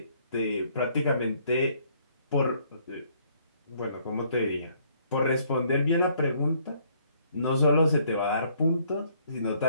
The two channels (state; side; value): inverted; both; correlation -0.65